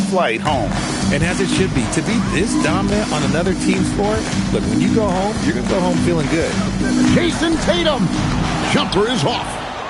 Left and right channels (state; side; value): identical; both; correlation 1.00